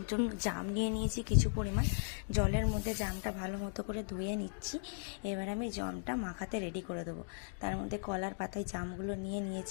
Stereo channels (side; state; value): right; silent; digital silence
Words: জন্য জাম নিয়ে নিয়েছি কিছু পরিমাণ। জলের মধ্যে জামটা ভালো মতো করে ধুয়ে নিচ্ছি। এবার আমি জামটা মাখাতে রেডি করে দেবো। তার মধ্যে কলার পাতায় জামগুলো নিয়ে